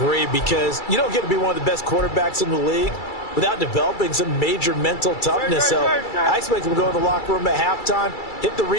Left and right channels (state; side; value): late; right; 2.3 ms